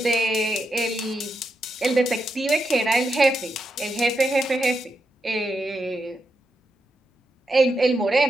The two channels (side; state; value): both; normal; correlation 0.85